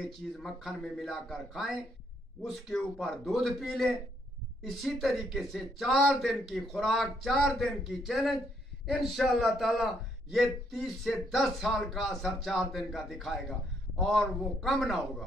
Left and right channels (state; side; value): normal; both; correlation 0.72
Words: चीज़ मक्खन में मिलाकर खाएं, उसके ऊपर दूध पी लें। इसी तरीके से 4 दिन की खुराक, 4 दिन की चैलेंज, इंशाअल्लाह ताला ये 30 से 10 साल का असर 4 दिन का दिखाएगा और वो कम ना